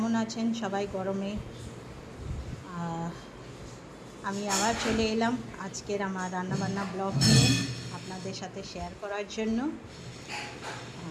আছেন সবাই গরমে? আমি আবার চলে এলাম আজকের আমার রান্নাবান্না ব্লগ নিয়ে আপনাদের সাথে শেয়ার করার জন্য।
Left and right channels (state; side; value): identical; both; correlation 1.00